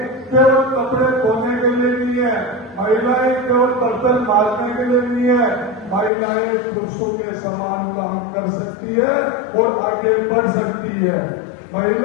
केवल कपड़े धोने के लिए नहीं है, महिलाएं केवल बर्तन मारने के लिए नहीं है, महिलाएं पुरुषों के समान काम कर सकती है और आगे बढ़ सकती है।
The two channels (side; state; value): right; drops out; at 6.1 s